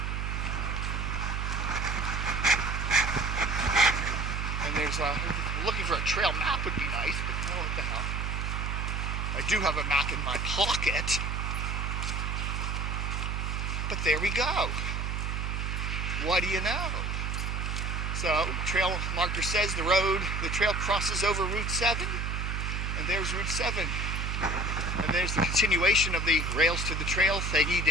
And there's looking for a trail map would be nice, but oh, what the hell. I do have a map in my pocket. But there we go. What do you know? So, trail marker says the trail crosses over Route 7, and there's Route 7. And there's the continuation of the rails to the trail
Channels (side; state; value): right; noise; hum, 1 dB below the sound